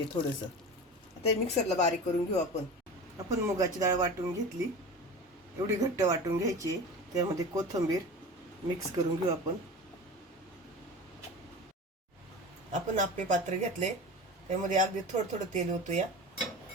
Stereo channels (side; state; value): both; normal; correlation 0.33